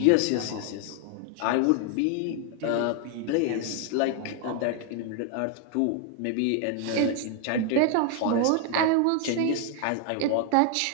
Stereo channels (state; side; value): different; both; correlation 0.00